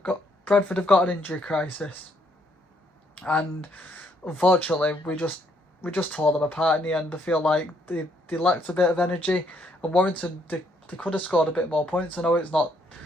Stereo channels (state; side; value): normal; both; correlation 0.70